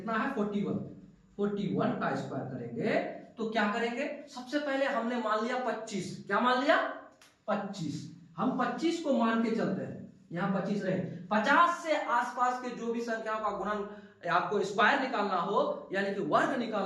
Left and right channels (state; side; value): identical; both; correlation 1.00